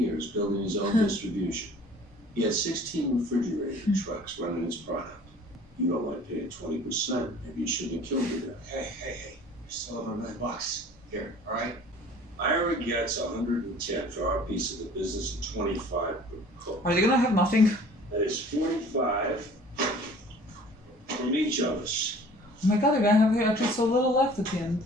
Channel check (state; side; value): normal; both; correlation 0.49